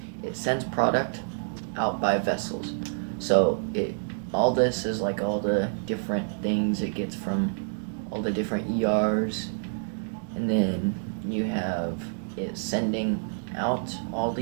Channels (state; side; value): silent; left; digital silence